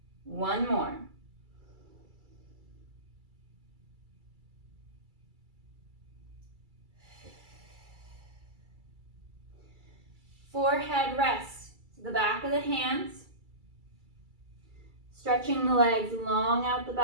One more. Forehead rests to the back of the hands. Stretching the legs long out the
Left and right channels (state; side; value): late; left; 2.3 ms